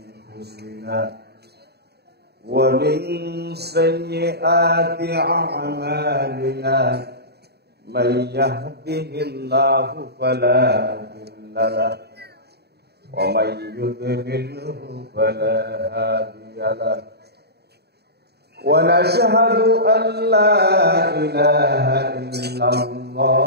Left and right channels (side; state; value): left; late; 0.47 ms